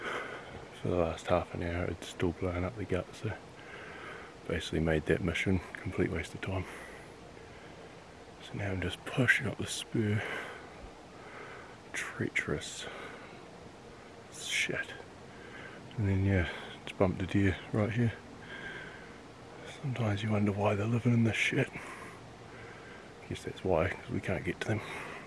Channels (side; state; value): both; identical; correlation 1.00